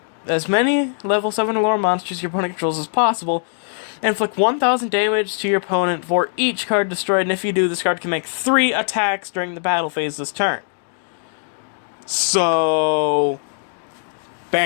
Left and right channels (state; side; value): silent; right; digital silence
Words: as many level 7 or lower monsters your opponent controls as possible, and inflict 1,000 damage to your opponent for each card destroyed, and if you do, this card can make 3 attacks during the battle phase this turn. So,